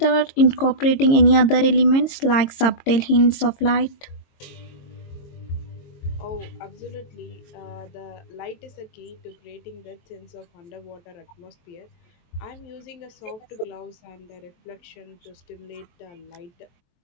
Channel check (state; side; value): late; right; 22 ms